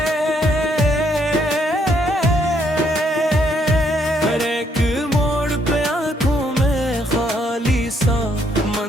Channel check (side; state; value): both; normal; correlation 0.71